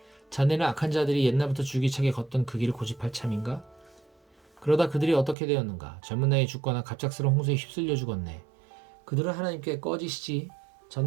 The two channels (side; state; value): left; drops out; at 5.4 s